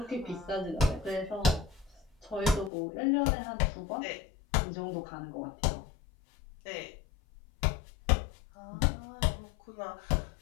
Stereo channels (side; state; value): right; drops out; at 2.7 s